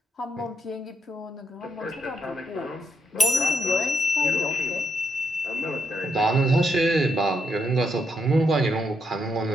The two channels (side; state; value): both; normal; correlation 0.77